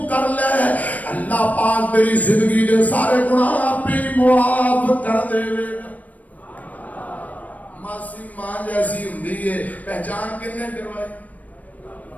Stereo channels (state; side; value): late; right; 0.073 ms